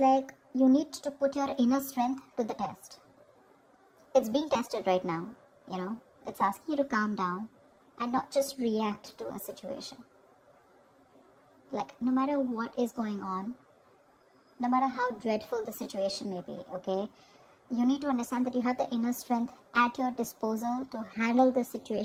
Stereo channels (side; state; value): both; identical; correlation 1.00